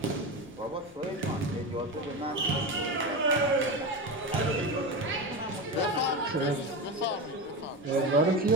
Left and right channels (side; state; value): both; normal; correlation 0.20